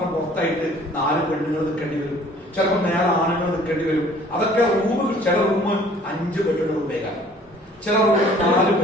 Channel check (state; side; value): normal; both; correlation 0.54